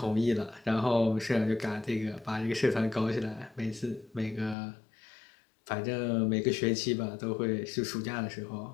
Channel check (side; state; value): right; drops out; at 4.5 s